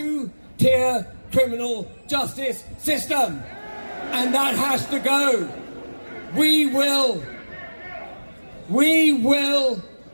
criminal justice system. And that has to go. We will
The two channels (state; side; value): inverted; both; correlation -1.00